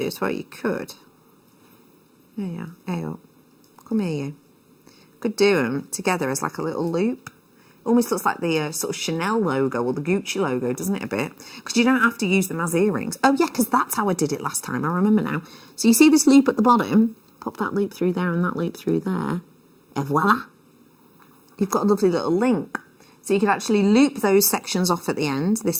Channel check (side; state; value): both; identical; correlation 1.00